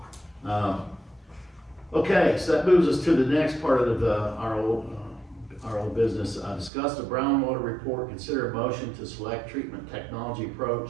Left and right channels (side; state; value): left; drops out; at 6.7 s